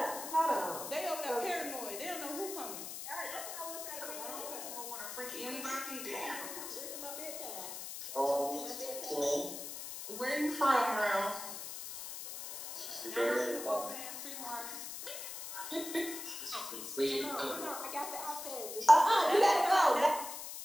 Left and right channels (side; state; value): left; noise; hiss, 8 dB below the sound